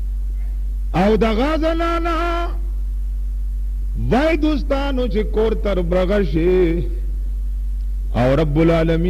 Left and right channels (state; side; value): identical; both; correlation 1.00